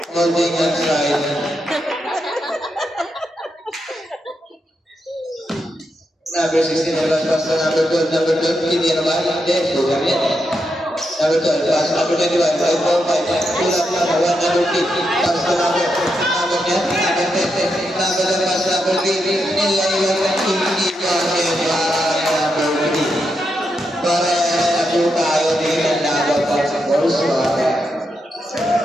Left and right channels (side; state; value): both; normal; correlation 0.84